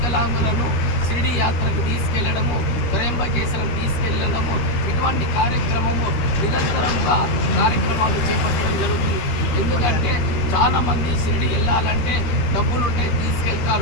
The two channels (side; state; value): right; late; 13 ms